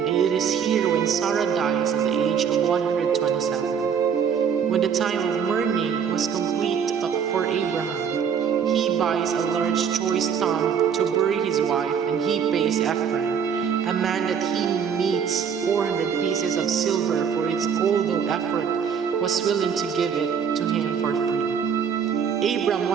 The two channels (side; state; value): left; quieter; 7.2 dB